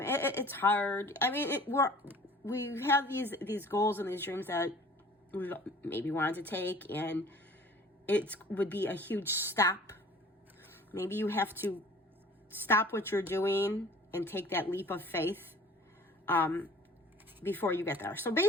hard. I mean, we have these goals and these dreams that we maybe wanted to take, and it would be a huge step. Maybe you have to stop what you're doing and take that leap of faith before you get there. So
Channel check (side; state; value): both; normal; correlation 0.48